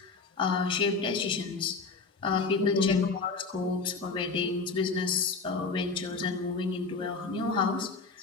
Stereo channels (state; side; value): quieter; right; 4.3 dB